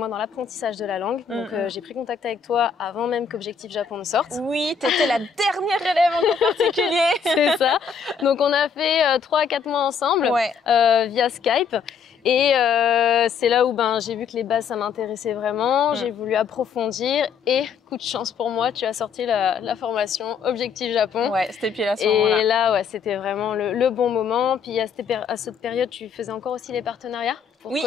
dans l'apprentissage de la langue. Donc j'ai pris contact avec toi avant même qu'Objectif Japon ne sorte. Oui, t'étais la dernière élève en particulier. C'est ça. Donc on a fait 3 à 4 mois ensemble via Skype. Et c'est là où j'ai vu que les bases, ça m'intéressait vraiment. J'ai voulu approfondir et coup de chance pour moi, tu as sorti la formation Objectif Japon. Ouais, c'était pile à ce moment-là. Et là, c'était vraiment le bon moment. Puis à cette période, tu faisais encore aussi les partenariats pour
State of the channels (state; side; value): quieter; right; 6.3 dB